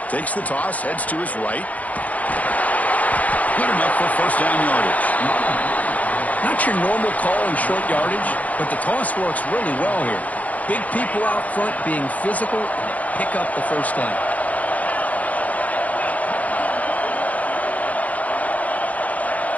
Takes the toss, heads to his right. Good enough for first down yardage. Not your normal call in short yardage, but the toss works really well here. Big people out front being physical, and they pick up the first down.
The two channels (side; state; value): right; late; 0.073 ms